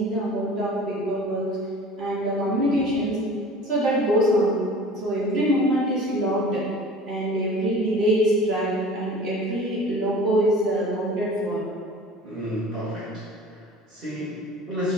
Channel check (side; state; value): both; normal; correlation 0.42